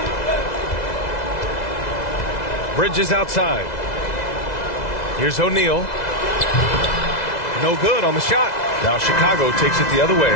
Bridges outside. Here's O'Neal. No good on the shot. Now Chicago takes it the other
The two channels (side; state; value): right; late; 2.0 ms